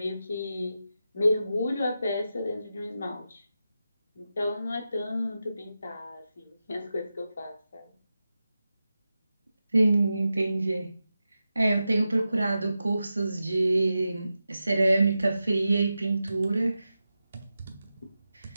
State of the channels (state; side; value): inverted; both; correlation -0.91